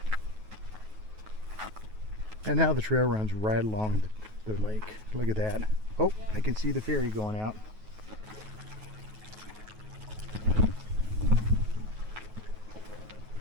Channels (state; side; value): late; left; 9.3 ms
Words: And now the trail runs right along the lake. Look at that. Oh, I can see the ferry going out.